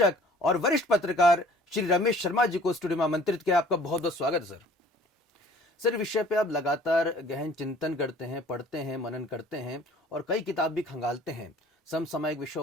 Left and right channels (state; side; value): normal; both; correlation 0.52